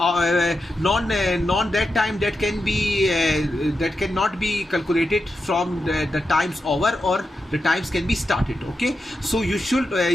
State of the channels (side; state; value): both; normal; correlation 0.88